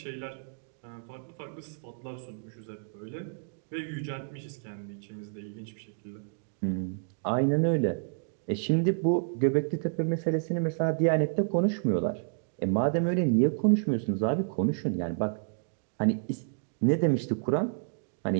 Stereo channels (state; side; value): silent; left; digital silence